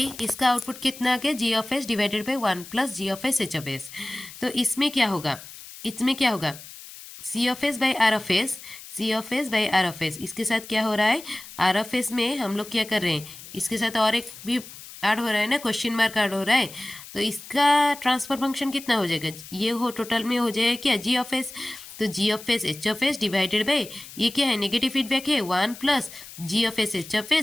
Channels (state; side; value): noise; left; hiss, 16 dB below the sound